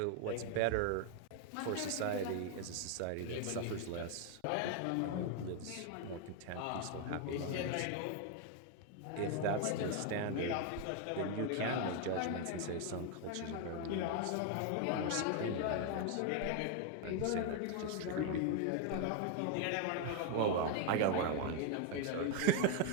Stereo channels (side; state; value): both; different; correlation 0.01